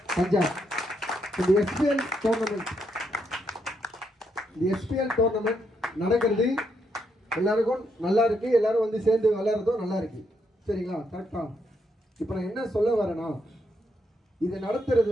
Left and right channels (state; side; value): normal; both; correlation 0.77